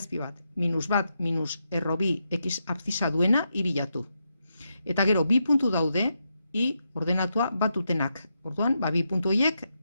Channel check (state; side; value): inverted; both; correlation -0.84